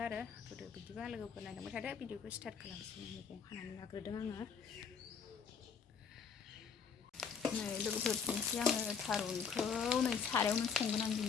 आरो होदो। बिदिबा लोगोफोर नायलांबाय थादो। भिडिअखौ स्टार्ट खालामसै। मैगं हानानै लाग्रोदों आङो। नै लोगोफोर दिनैसो आङो थारुनखौ नै सारायावनो संगोन आं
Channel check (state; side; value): quieter; right; 6.4 dB